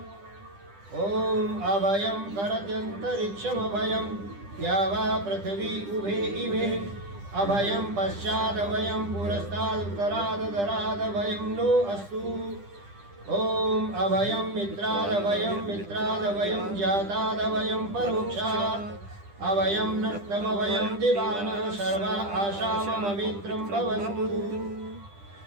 ओम अभयं करत्यन्तरिक्षमभयं या वा पृथिवी उभे इमे अभयं पश्चादभयं पुरस्तादुत्तरादधरादभयं नो अस्तु। ओम अभयं मित्रादभयं जातादभयं परोक्षात् अभयं नक्तमभयं दिवानः सर्वा आशाममित्रं भवन्तु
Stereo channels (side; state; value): left; late; 10 ms